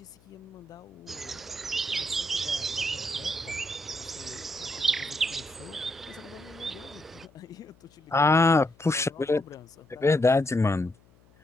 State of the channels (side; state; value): left; noise; hum, 29 dB below the sound